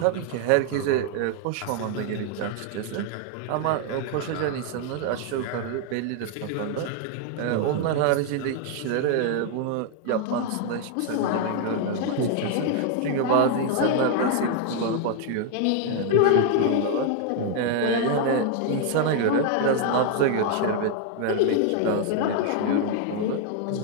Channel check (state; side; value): different; both; correlation 0.00